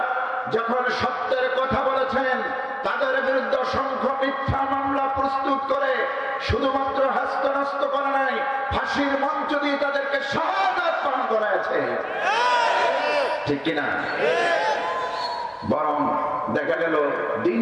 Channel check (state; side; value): identical; both; correlation 1.00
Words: যখন সত্যের কথা বলেছেন, তাদের বিরুদ্ধে অসংখ্য মিথ্যা মামলা প্রস্তুত করে শুধুমাত্র হস্তনস্ত করে নাই, ফাঁসির মঞ্চ দিয়ে তাদেরকে শাহাদাত পান করাইছে। ঠিক কিনা? বরং দেখা গেল দিন